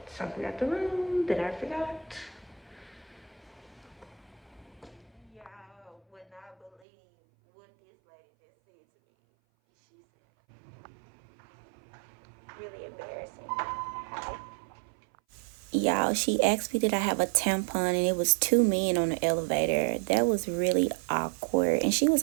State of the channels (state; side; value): drops out; left; at 6.8 s